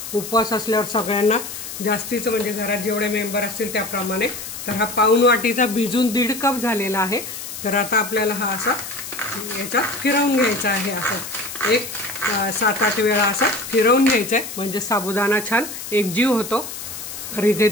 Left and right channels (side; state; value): left; noise; hiss, 9 dB below the sound